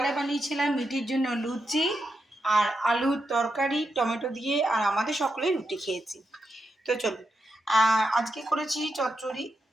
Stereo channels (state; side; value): normal; both; correlation 0.85